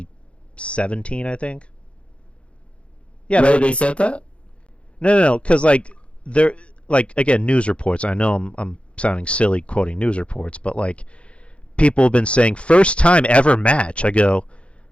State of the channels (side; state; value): right; late; 0.060 ms